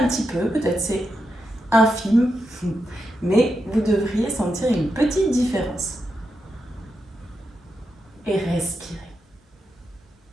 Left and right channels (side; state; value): both; normal; correlation 0.86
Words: petit peu, peut-être c'est infime, mais vous devriez sentir une petite différence. Et respirez.